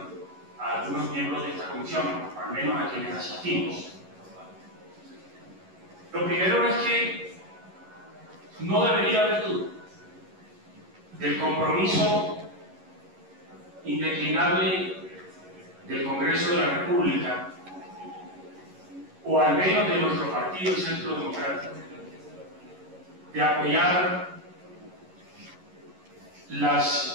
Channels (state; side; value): late; left; 11 ms